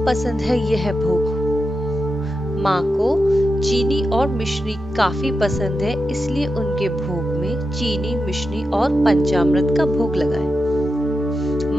पसंद है यह भोग। माँ को चीनी और मिश्री काफी पसंद है, इसलिए उनके भोग में चीनी, मिश्री और पंचामृत का भोग लगाएं।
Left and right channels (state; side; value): normal; both; correlation 0.89